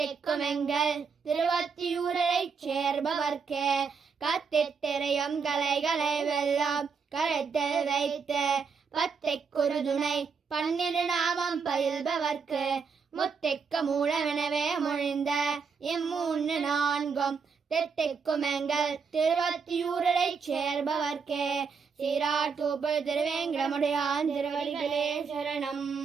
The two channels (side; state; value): left; quieter; 5.6 dB